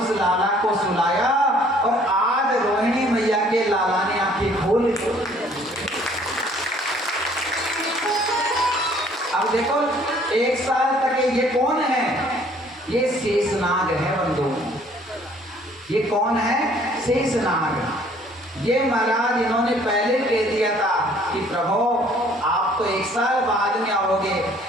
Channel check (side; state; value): both; normal; correlation 0.58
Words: उस लाला को सुलाया और आज रोहिणी मैया के लाला ने आंखें खोल ली। अब देखो 1 साल तक ये कौन है? ये शेषनाग है बंधु। ये कौन है? शेषनाग। ये महाराज इन्होंने पहले कह दिया था कि प्रभु आप तो 1 साल बाद में आओगे,